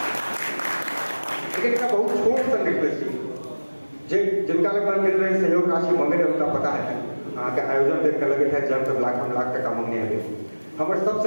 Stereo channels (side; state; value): both; inverted; correlation -1.00